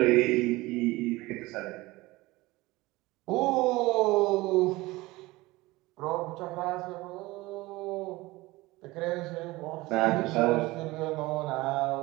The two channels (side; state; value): left; quieter; 20.5 dB